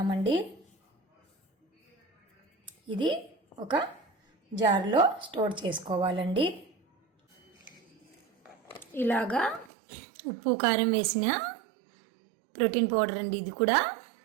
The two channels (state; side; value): drops out; left; at 9.7 s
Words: ఇది ఒక జార్లో స్టోర్ చేసుకోవాలండి. ఇలాగా ఉప్పు కారం వేసిన ప్రోటీన్ పౌడర్ అండి. ఇది కూడా